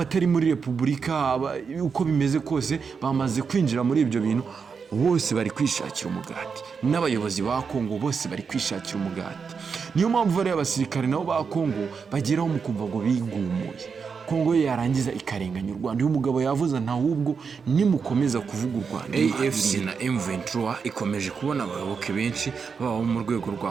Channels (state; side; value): quieter; left; 5.7 dB